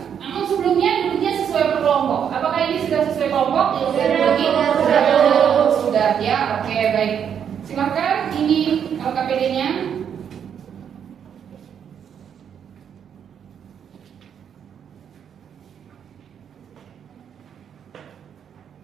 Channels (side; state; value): left; quieter; 8.2 dB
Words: Namun sebelumnya duduknya sesuai per kelompok. Apakah ini sudah sesuai kelompok? Sudah ya, oke baik. Silakan ini LKPD-nya.